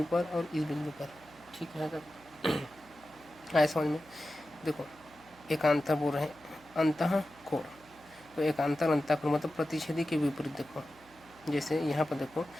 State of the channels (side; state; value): right; noise; hum, 25 dB below the sound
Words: पर और इस बिंदु पर। ठीक है, तब आए समझ में। देखो एकांतर बोल रहे हैं अंतःकोण, तो एकांतर अंतःकोण मतलब प्रतिच्छेदी के विपरीत। देखो जैसे यहाँ पर देखो,